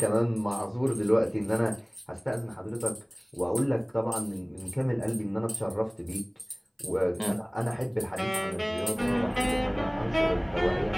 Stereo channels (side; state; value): both; identical; correlation 1.00